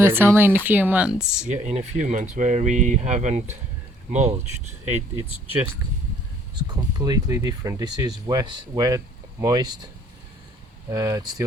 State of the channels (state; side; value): normal; both; correlation 0.61